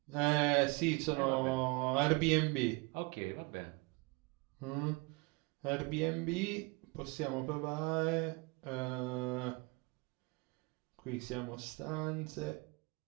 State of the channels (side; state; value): left; quieter; 27.2 dB